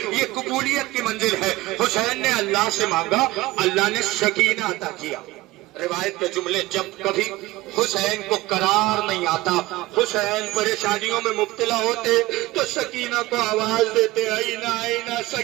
یہ قبولیت کی منزل ہے۔ حسین نے اللہ سے مانگا، اللہ نے سکینہ عطا کیا۔ روایت کے جملے، جب کبھی حسین کو قرار نہیں آتا، حسین پریشانیوں میں مبتلا ہوتے تو سکینہ کو آواز دیتے، آئینہ آئینہ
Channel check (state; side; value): quieter; left; 19.0 dB